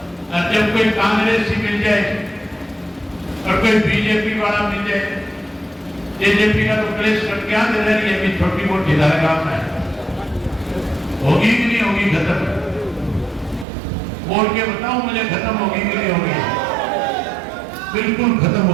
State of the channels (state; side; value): drops out; left; at 13.7 s